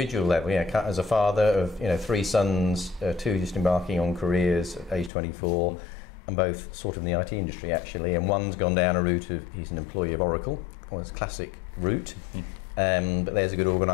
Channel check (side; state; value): right; drops out; at 5.1 s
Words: level. As a father of 3 sons, 2 just embarking on careers at age 24, and both sort of in the IT industry actually, and one's gone down a route of he's an employee of Oracle, or his classic route. But there's a good